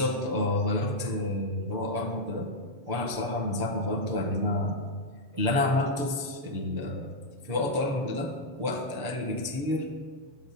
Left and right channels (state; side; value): late; left; 6.9 ms